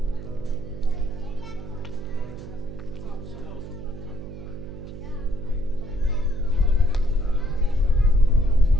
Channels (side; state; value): right; noise; hum, 12 dB below the sound